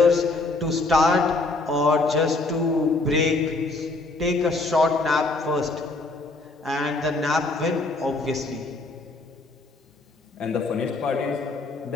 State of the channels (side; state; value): right; quieter; 3.3 dB